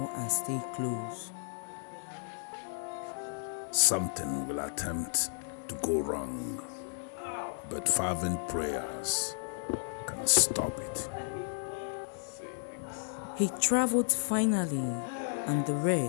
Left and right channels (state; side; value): silent; right; digital silence